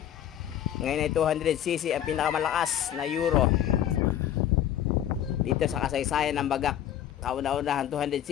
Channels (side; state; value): right; quieter; 10.9 dB